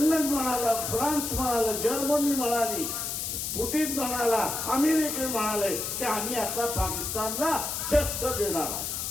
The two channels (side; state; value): left; noise; hiss, 3 dB below the sound